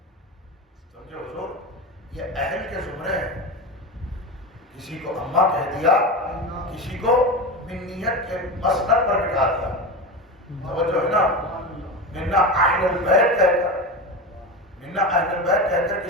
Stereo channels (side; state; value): both; normal; correlation 0.22